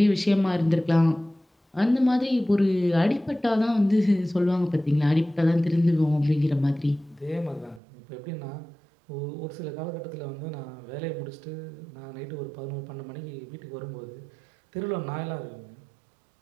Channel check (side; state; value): left; drops out; at 7.8 s